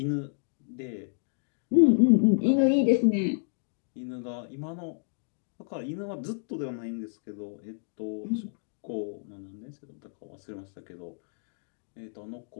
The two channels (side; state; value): right; silent; digital silence